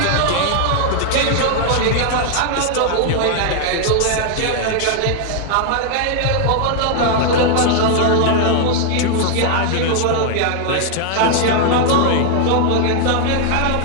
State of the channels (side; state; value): both; different; correlation 0.00